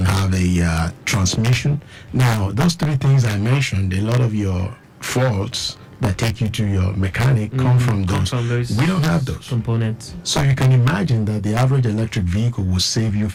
transmission. Now, those 3 things I mentioned, a lot of your faults that take you to your mechanic come from those. We don't have those components. So you can imagine that the average electric vehicle will save you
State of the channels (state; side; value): identical; both; correlation 1.00